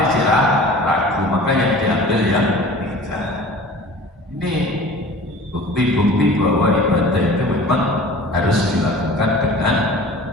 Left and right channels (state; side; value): normal; both; correlation 0.42